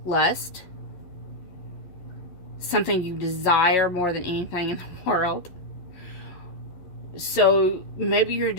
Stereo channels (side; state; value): right; late; 11 ms